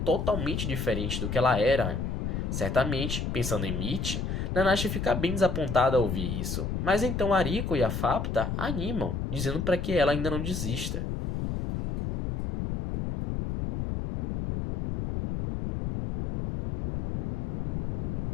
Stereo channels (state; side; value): noise; left; rumble, 2 dB below the sound